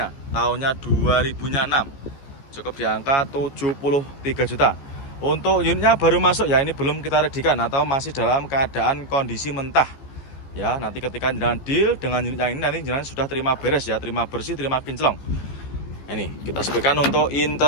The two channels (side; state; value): right; late; 14 ms